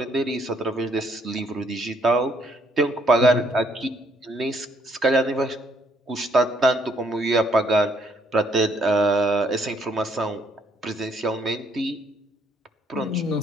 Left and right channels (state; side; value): normal; both; correlation 0.68